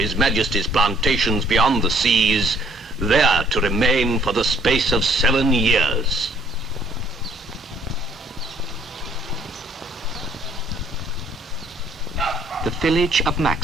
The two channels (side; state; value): both; normal; correlation 0.62